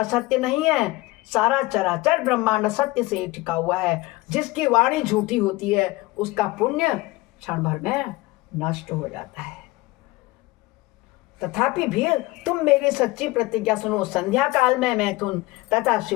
नहीं है। सारा चराचर ब्रह्मांड सत्य से टिका हुआ है। जिसकी वाणी झूठी होती है उसका पुण्य क्षण भर में नष्ट हो जाता है। तथापि भी तुम मेरी सच्ची प्रतिज्ञा सुनो। संध्या काल में मैथुन तथा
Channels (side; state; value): right; quieter; 20.8 dB